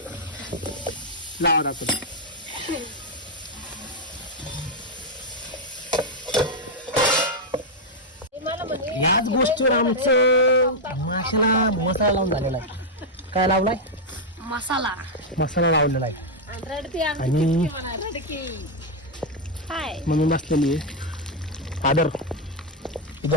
लावा दाखव. याच गोष्टीवर आमचं माशाला मसाला लावून झालेला आहे. काय लावलाय? मसाला लावलेला आहे. आणि म्हणून बसलेली आहे आदर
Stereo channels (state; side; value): normal; both; correlation -0.01